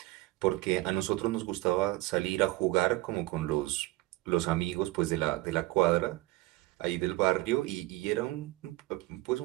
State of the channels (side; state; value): left; quieter; 19.5 dB